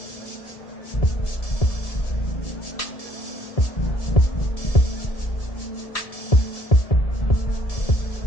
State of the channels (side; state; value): right; late; 1.7 ms